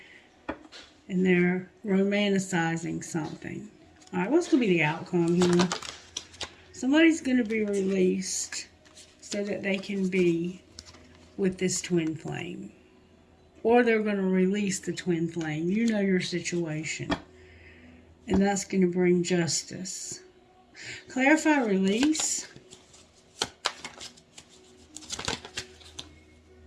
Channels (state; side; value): identical; both; correlation 1.00